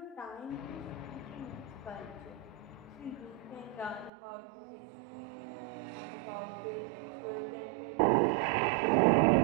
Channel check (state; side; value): drops out; left; at 4.1 s